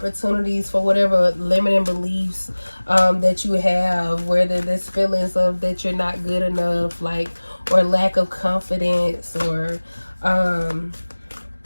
for whatever limiting beliefs that you have, whether there's feelings of that you're not good enough, like, or lack of confidence, or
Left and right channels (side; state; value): both; inverted; correlation -1.00